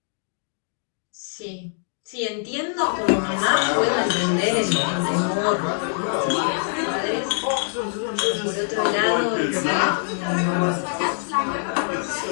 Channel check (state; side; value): silent; right; digital silence